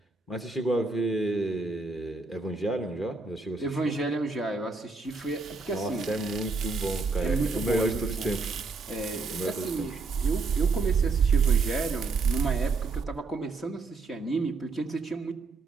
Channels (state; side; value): quieter; left; 4.0 dB